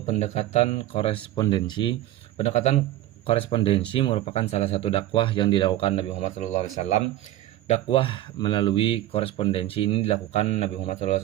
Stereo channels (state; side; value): quieter; left; 14.3 dB